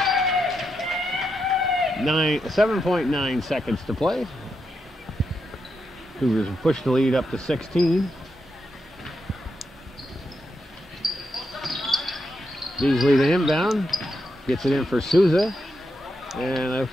7.9 seconds to play. Cougars have pushed the lead up to 16. Beasley the inbound. Gets it in for Souza. And it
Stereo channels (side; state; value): both; normal; correlation 0.84